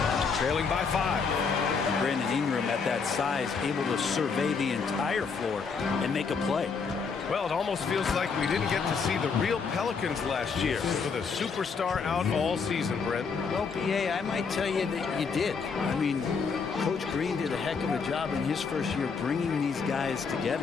trailing by 5. Brandon Ingram at that size, able to survey the entire floor and make a play. Well, it almost feels like we didn't get to see the real Pelicans last year with a superstar out all season, Brent. Well, B.A., I might tell you that you did. I mean, Coach Green did a heck of a job in his first year bringing these guys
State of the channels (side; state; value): right; quieter; 5.3 dB